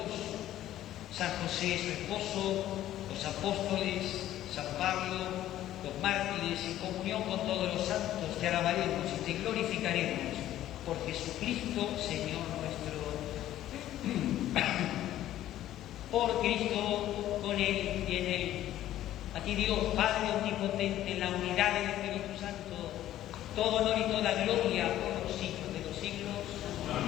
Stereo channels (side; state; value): right; quieter; 13.1 dB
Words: San José, su esposo, los apóstoles, San Pablo, los mártires, en comunión con todos los santos, te alabaremos y te glorificaremos por Jesucristo, Señor nuestro. Por Cristo, con Él y en Él. A ti Dios, Padre omnipotente, en la unidad del Espíritu Santo, todo honor y toda gloria por los siglos de los siglos.